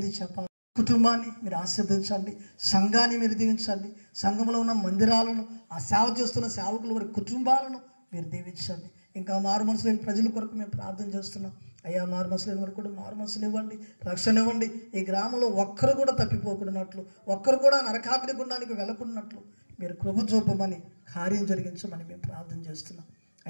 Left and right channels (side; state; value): both; inverted; correlation -1.00